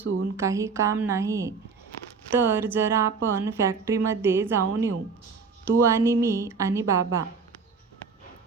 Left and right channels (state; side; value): quieter; left; 5.1 dB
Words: काही काम नाही, तर जरा आपण फॅक्टरीमध्ये जाऊन येऊ, तू आणि मी आणि बाबा.